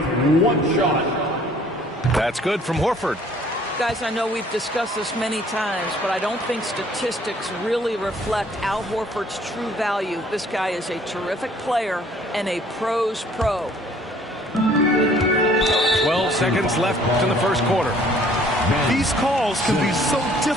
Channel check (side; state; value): both; normal; correlation 0.57